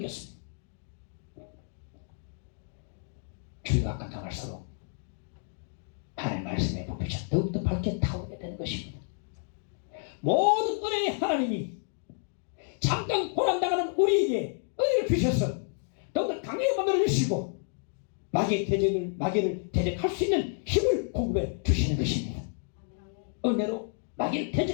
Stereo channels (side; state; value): right; silent; 58 dB below the other